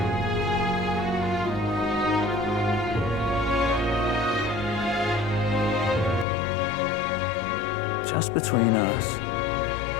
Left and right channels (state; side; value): drops out; right; at 6.2 s